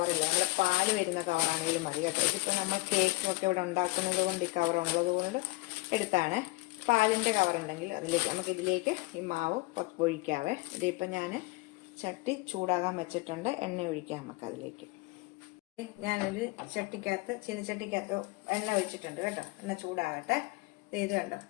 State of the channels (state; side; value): quieter; right; 25.0 dB